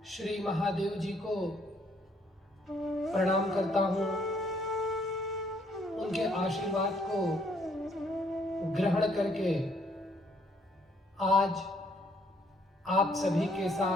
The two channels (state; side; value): normal; both; correlation 0.67